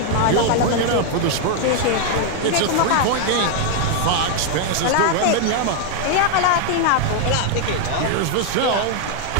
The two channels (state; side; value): different; both; correlation 0.00